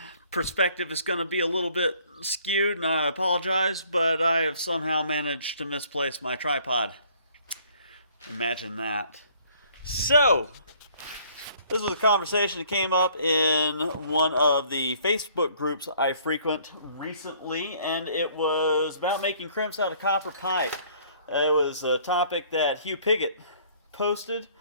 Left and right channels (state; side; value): inverted; both; correlation -0.59